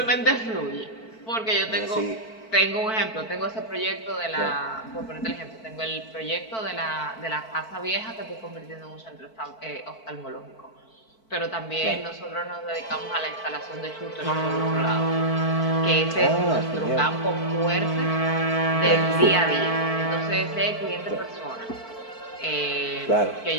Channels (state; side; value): late; right; 4.5 ms